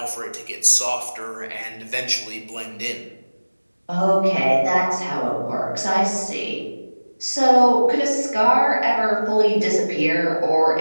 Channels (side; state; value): both; inverted; correlation -1.00